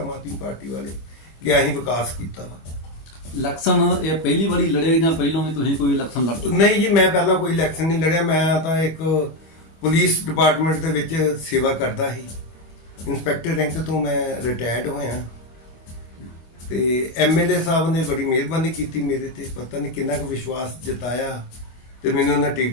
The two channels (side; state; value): right; late; 25 ms